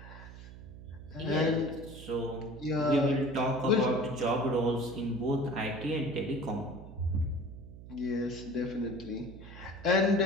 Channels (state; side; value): noise; right; hum, 15 dB below the sound